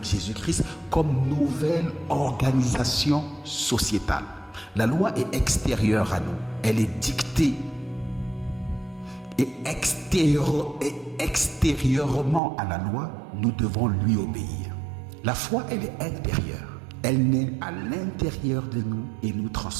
Jésus-Christ comme nouvelle organisation sociétale. La loi est extérieure à nous. Elle est dictée et extérieurement à la loi, nous devons lui obéir. La foi, elle est intérieure. Elle naît à l'intérieur de nous et nous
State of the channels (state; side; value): drops out; left; at 12.4 s